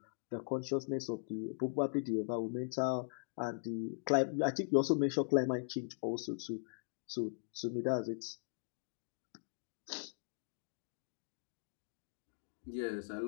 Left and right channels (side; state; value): right; silent; digital silence